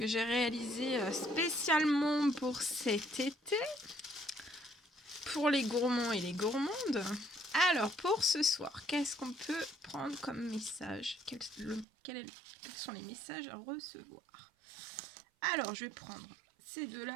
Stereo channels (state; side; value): drops out; left; at 11.9 s